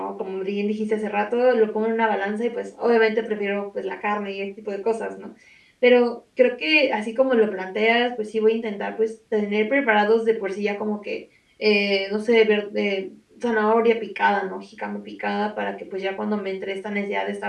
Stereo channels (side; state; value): both; identical; correlation 1.00